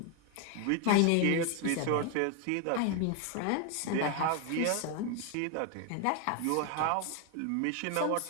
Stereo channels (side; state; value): both; different; correlation 0.01